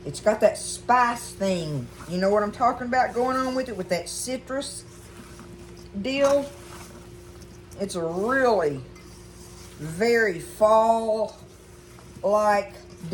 It's got that spice thing. You know what I'm talking about going on with it, with that citrus deal? It's a really very fall-like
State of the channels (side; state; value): both; identical; correlation 1.00